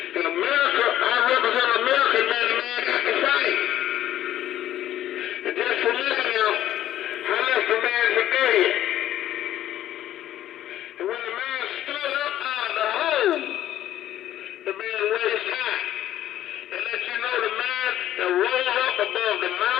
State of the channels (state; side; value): quieter; right; 12.5 dB